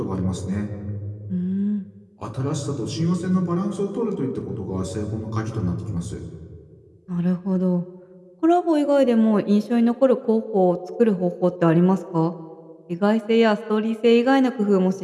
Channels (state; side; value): identical; both; correlation 1.00